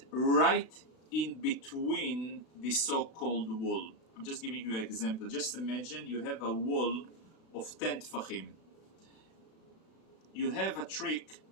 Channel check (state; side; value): late; right; 36 ms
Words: right in between the so-called wall. I'm just giving you an example. Just imagine you have a wall of 10 tfachim. You have a trick